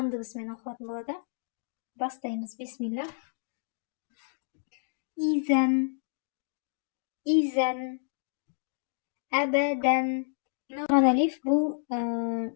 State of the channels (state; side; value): silent; right; digital silence